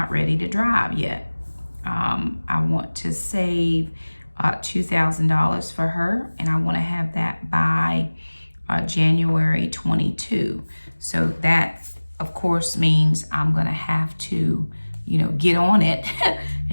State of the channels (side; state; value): both; inverted; correlation -1.00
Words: ready to drive yet. I want to save $2,000 for her, and I want to have that by January 22. So that, of course, means I'm going to have to, get on it.